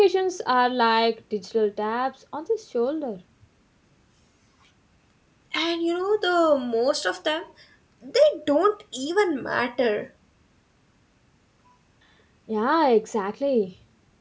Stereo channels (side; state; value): both; identical; correlation 1.00